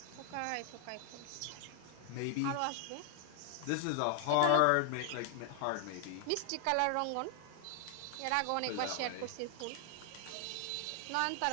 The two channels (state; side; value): different; both; correlation 0.00